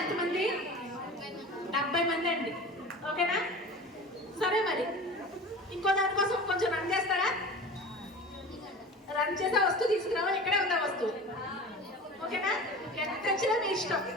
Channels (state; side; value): normal; both; correlation 0.36